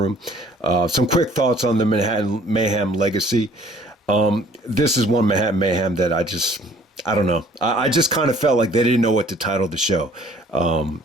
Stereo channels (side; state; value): both; normal; correlation 0.56